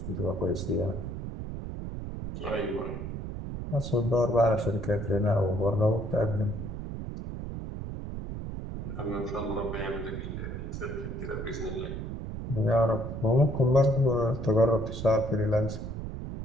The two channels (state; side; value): noise; right; rumble, 6 dB below the sound